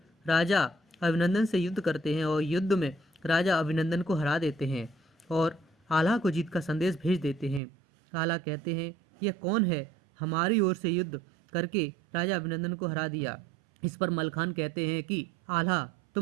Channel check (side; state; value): left; drops out; at 7.6 s